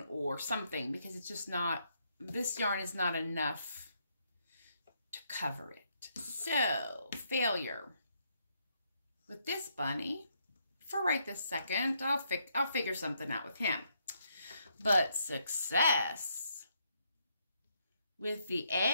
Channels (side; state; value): both; inverted; correlation -0.75